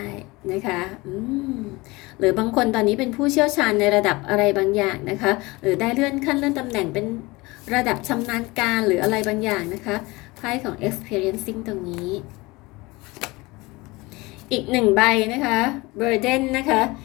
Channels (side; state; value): right; quieter; 22.8 dB